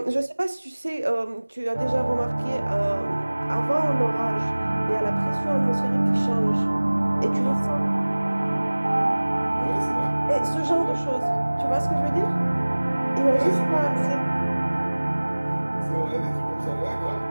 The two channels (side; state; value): both; inverted; correlation -1.00